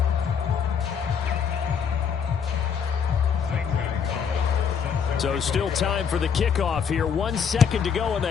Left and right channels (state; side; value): quieter; right; 7.0 dB